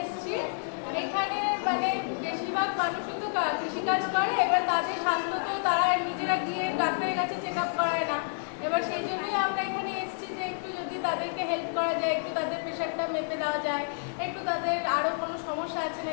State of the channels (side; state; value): right; silent; 58 dB below the other